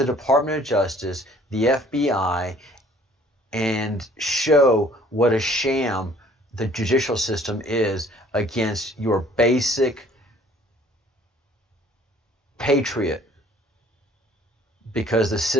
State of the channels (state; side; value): normal; both; correlation 0.56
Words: Department of Justice, the FBI, and show what a sham the judicial system is against your basic patriot, because the